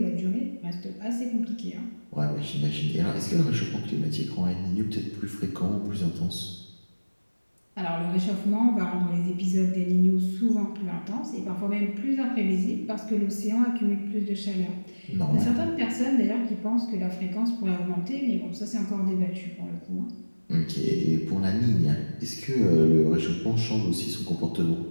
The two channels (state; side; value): inverted; both; correlation -1.00